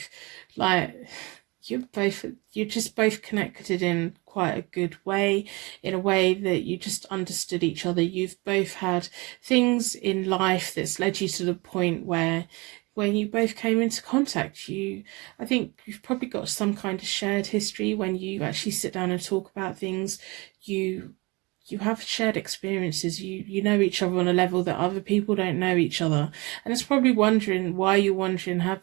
like, you're just both connected in quite a good way, in a way that you just understood each other. You've both had things in life that's led you to the point where when you both came into contact, I think you've probably got some kind of shared history. When you actually sit down and talk about things, you have shared experiences. You know each other on a level that other people don't know each other, and it's probably you're wondering, have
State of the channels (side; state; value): left; quieter; 25.7 dB